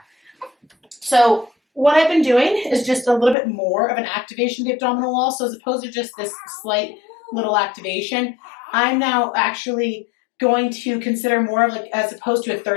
So what I've been doing is just a little bit more of an activation of the abdominal wall. So as opposed to just this slight little activation, I'm now actually going to consider more of like, as opposed to a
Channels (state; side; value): drops out; right; at 3.4 s